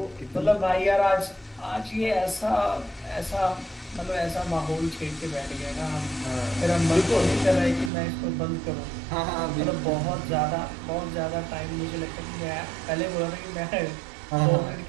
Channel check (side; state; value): left; drops out; at 7.9 s